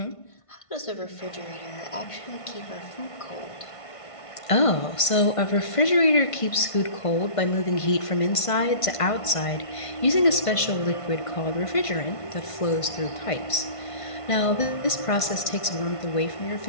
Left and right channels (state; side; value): late; right; 1.5 ms